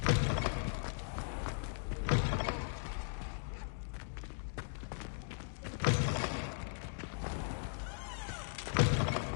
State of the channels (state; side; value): silent; right; digital silence